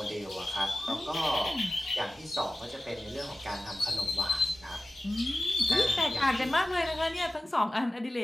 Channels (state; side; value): normal; both; correlation 0.95